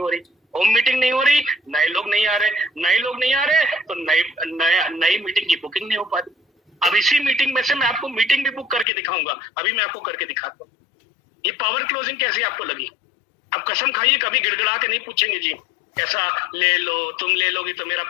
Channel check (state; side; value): drops out; right; at 8.8 s